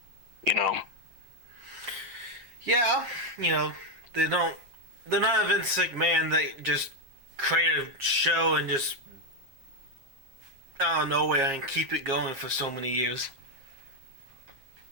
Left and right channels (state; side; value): late; left; 7.4 ms